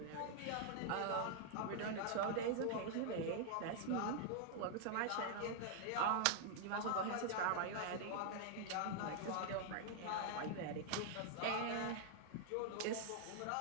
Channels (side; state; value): both; different; correlation 0.00